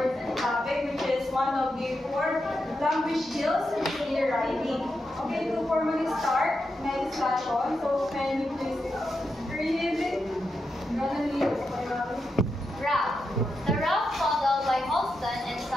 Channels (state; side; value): normal; both; correlation 0.86